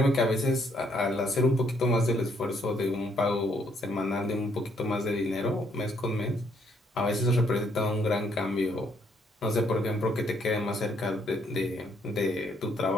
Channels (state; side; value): normal; both; correlation 0.69